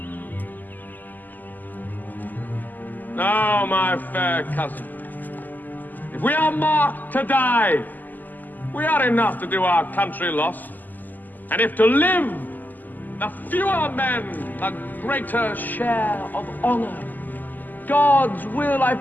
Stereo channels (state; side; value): late; right; 0.085 ms